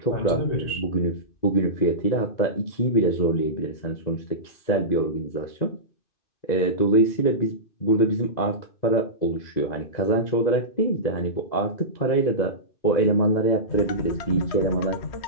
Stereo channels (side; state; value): right; late; 2.0 ms